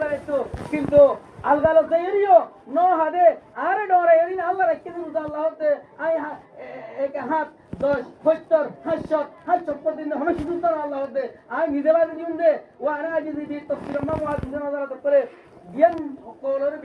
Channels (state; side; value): identical; both; correlation 1.00